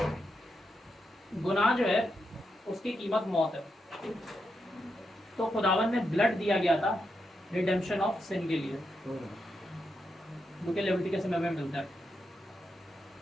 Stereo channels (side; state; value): both; normal; correlation 0.84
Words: गुनाह जो है उसकी कीमत मौत है। तो खुदावन में ब्लड दिया गया था रिडेम्पशन ऑफ सिन के लिए, जो कि लेविटिकस में हमें मिलता है।